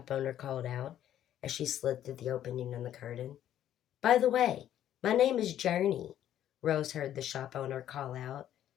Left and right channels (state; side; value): quieter; right; 11.3 dB